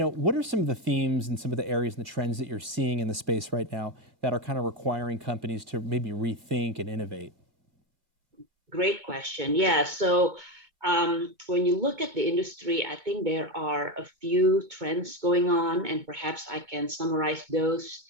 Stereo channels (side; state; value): left; late; 2.2 ms